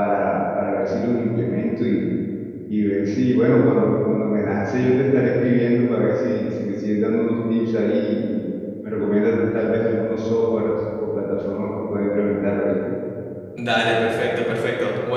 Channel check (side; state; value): both; identical; correlation 1.00